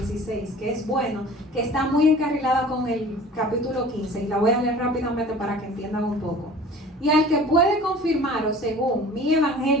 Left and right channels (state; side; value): normal; both; correlation 0.45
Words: que es bueno, que está muy encarrilada con el capítulo 15, y la voy a leer rápidamente para que entiendan un poco. Y al que puede confirmaros según mi